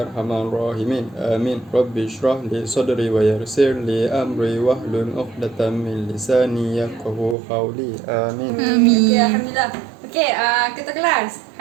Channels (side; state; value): left; drops out; at 7.4 s